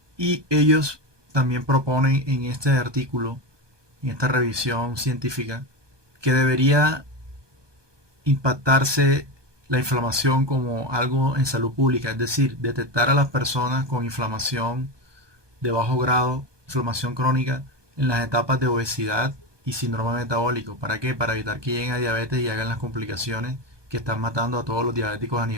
Y ellos también proponen en este artículo, en esta revisión científica, que debería impactarse la inflamación como algo en salud pública, es decir, detectar a las personas con inflamación de bajo grado, inflamación crónica, en las etapas de obesidad y síndrome metabólico. ¿Para qué? Para evitar que lleguen a diabetes y hagan las complicaciones que están matando a todos los diabéticos a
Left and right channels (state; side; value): late; left; 1.2 ms